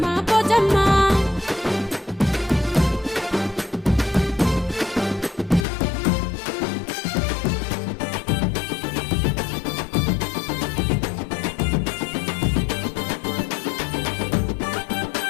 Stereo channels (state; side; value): drops out; right; at 5.7 s